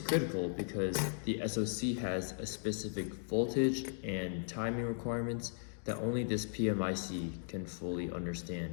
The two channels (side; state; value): right; silent; digital silence